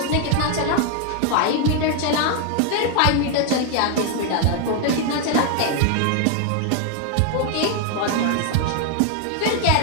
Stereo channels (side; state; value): both; different; correlation 0.01